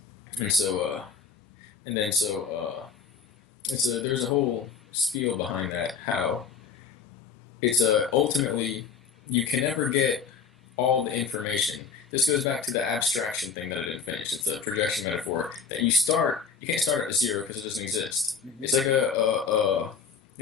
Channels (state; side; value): quieter; right; 5.9 dB